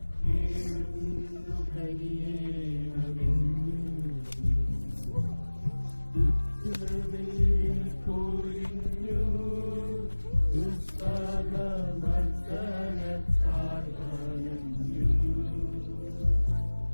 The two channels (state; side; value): inverted; both; correlation -1.00